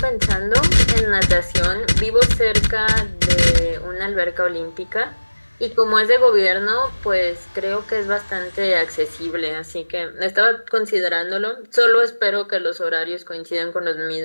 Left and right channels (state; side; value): inverted; both; correlation -1.00